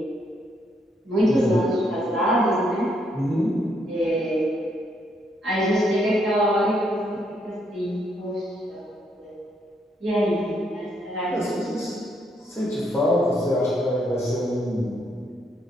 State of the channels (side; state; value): both; normal; correlation 0.74